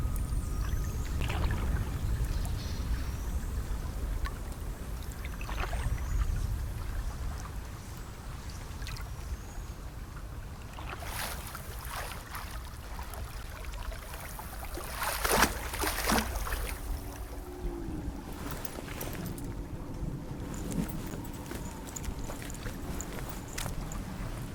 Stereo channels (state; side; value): identical; both; correlation 1.00